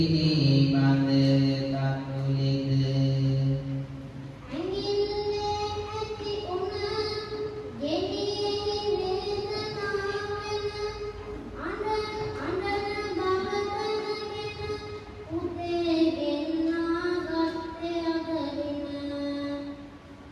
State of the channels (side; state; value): both; identical; correlation 1.00